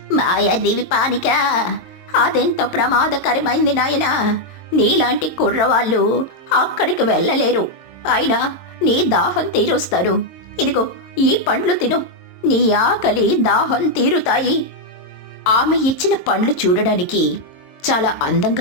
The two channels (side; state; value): right; late; 22 ms